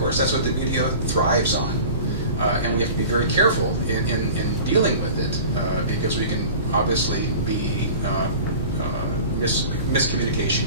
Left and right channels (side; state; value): both; inverted; correlation -0.39